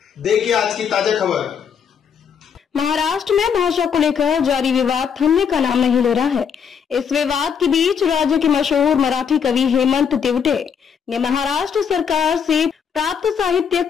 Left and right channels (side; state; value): right; quieter; 7.1 dB